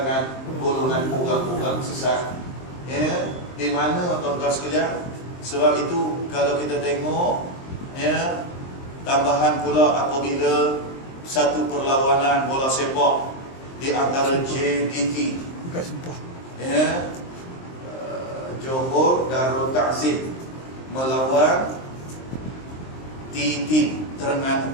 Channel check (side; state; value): right; late; 23 ms